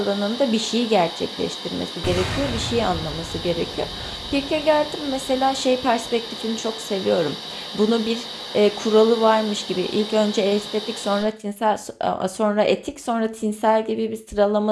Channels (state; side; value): identical; both; correlation 1.00